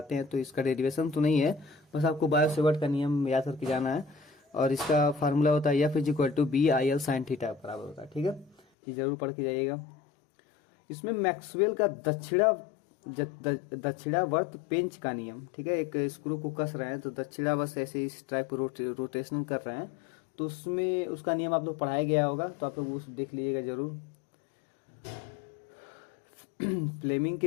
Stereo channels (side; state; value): right; drops out; at 8.6 s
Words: हैं तो इसका डेरिवेशन तो नहीं है, बस आपको बायो-सेवर्ट का नियम याद करके जाना है। और इसका फार्मूला होता है F is equal to B I L sine theta बराबर होता है, ठीक है, ये जरूर पढ़ के जाइएगा। इसमें मैक्सवेल का दक्षिणावर्त पेंच का नियम, ठीक है, एक स्क्रू को कस रहे हैं तो दक्षिणावर्त ऐसे इस टाइप रोटेशन कर रहे हैं, तो उसमें उसका नियम आप लोग पढ़ाया गया होगा, तो आप लोग उस देख लीजिएगा जरूर। फ्लेमिंग